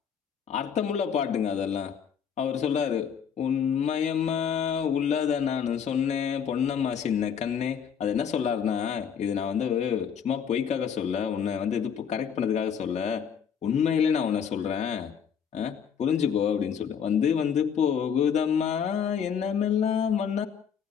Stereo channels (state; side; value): quieter; right; 7.6 dB